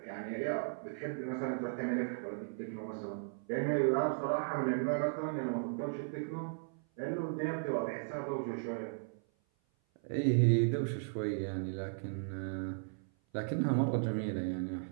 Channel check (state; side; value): silent; left; 54 dB below the other